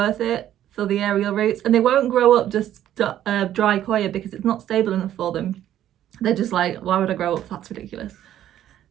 it for the aerial roots, and they won't grow up just dry coir because it's not stable enough for them. They're just like, why would I grow up? That's ridiculous.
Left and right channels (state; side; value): quieter; left; 11.8 dB